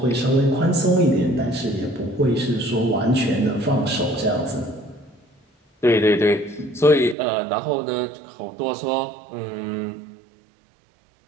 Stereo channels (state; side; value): drops out; left; at 7.2 s